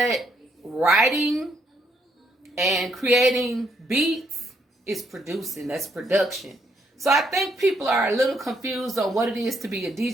writing and creating beats is producing. That's production. So I think people are a little confused on what it is to be a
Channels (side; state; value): both; normal; correlation 0.74